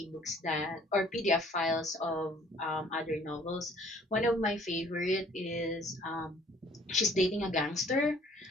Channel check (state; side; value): normal; both; correlation 0.57